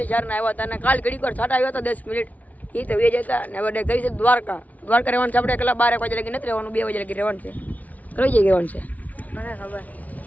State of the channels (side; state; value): right; late; 0.074 ms